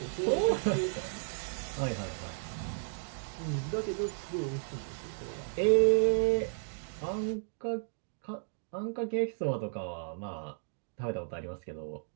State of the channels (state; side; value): silent; left; digital silence